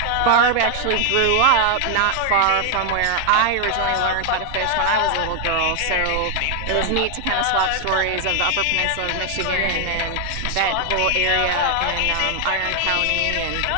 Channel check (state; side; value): different; both; correlation 0.00